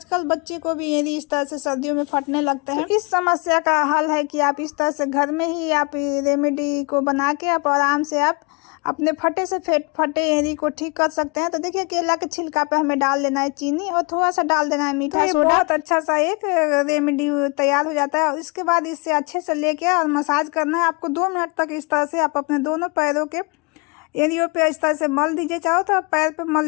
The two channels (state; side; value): quieter; right; 31.0 dB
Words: बच्चे को भी एड़ी इस तरह से सर्दियों में फटने लगते हैं। तो इस समस्या का हल है कि आप इस तरह से घर में ही आप रेमेडी को बना के आप आराम से आप अपने फटे एड़ी को ठीक कर सकते हैं। तो देखिए केला के छिलका पे हमें डाल देना है चीनी और थोड़ा सा डाल देना है मीठा सोडा। बहुत अच्छा सा एक रेमेडी तैयार हो जाता है। और इसके बाद इससे अच्छे से लेके और मसाज करना है आपको 2 मिनट तक। इस तरह से आप अपने दोनों पैरों के एरियो पे इस तरह से मल दीजिए, चाहो तो आप पैर पे